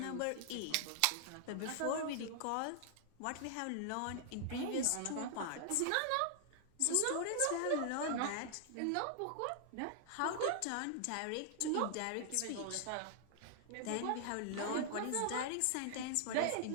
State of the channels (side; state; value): both; different; correlation 0.00